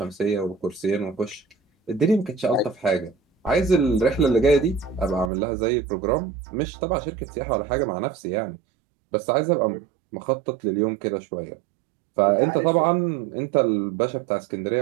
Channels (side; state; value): left; drops out; at 5.3 s